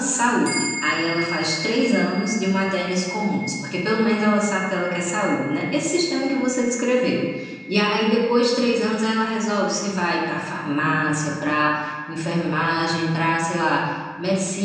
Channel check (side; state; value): both; identical; correlation 1.00